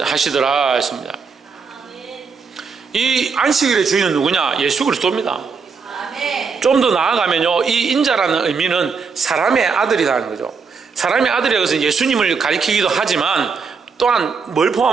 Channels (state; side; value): quieter; left; 5.3 dB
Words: 했습니다. 이 안식일의 주인은 누구냐? 예수 그리스도입니다. 좀 더 나아가면요, 이 인자라는 의미는 사람의 아들이라는 거죠. 사람의 아들이라고 해서 예수님을 가리키기도 하지만 또한 뭘